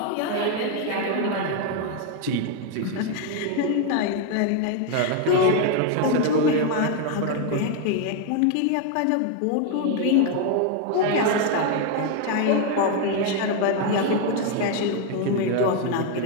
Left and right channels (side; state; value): both; different; correlation 0.01